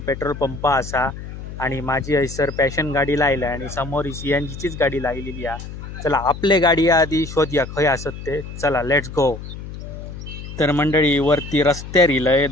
पेट्रोल पंप असा आणि माझी हैसर पॅशन गाडी लायला आणि समोर CNGचीच गाडी लायलेली आहे. चला आपले गाडी आधी शोधूया खंय असत ते. चला लेट्स गो. तर मंडळी वरती रस्त्यार इलय,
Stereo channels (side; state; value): left; noise; hum, 11 dB below the sound